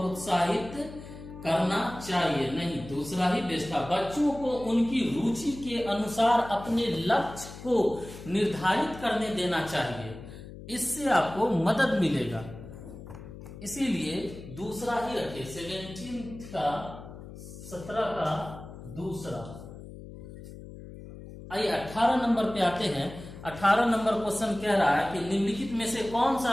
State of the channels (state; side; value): noise; left; hum, 14 dB below the sound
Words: करना चाहिए, नहीं, दूसरा ही बेस्ट था। बच्चों को उनकी रुचि के अनुसार अपने लक्ष्य को निर्धारित करने देना चाहिए, इससे आपको मदद मिलेगा, इसीलिए दूसरा ही रखे। 17 का दूसरा। आइए 18 नंबर पे आते हैं। 18 नंबर क्वेश्चन कह रहा है कि निम्नलिखित में से कौन